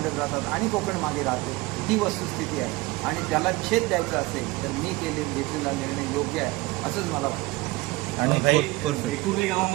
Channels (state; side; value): quieter; left; 21.6 dB